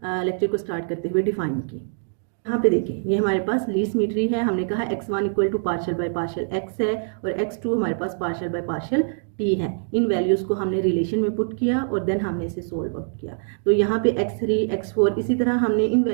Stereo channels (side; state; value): left; silent; digital silence